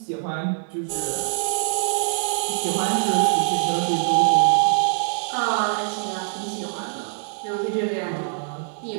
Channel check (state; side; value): silent; left; digital silence